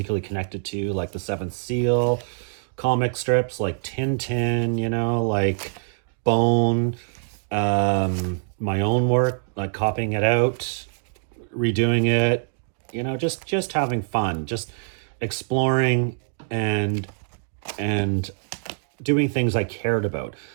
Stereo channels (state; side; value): silent; left; 62 dB below the other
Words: connected to, like The Seventh Seal, comic strips like Tintin, like Bone, my own work, like copying it out, redoing it, just having fun, just exploring and and doing things I cared about.